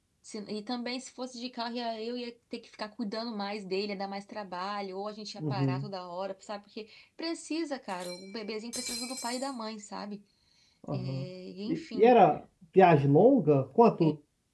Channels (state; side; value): identical; both; correlation 1.00